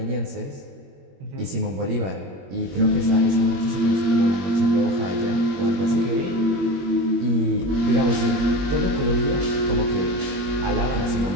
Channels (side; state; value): left; late; 21 ms